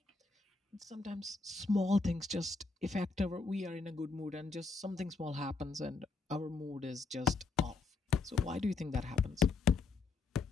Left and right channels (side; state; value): right; quieter; 4.1 dB